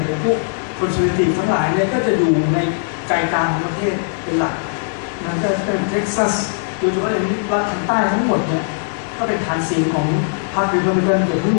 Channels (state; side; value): silent; right; 67 dB below the other